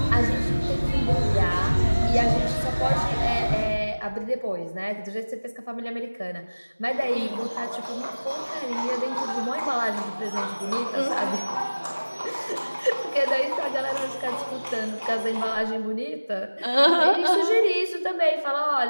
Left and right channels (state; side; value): inverted; both; correlation -1.00